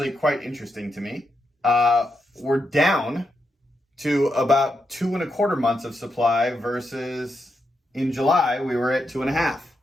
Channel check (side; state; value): both; normal; correlation 0.83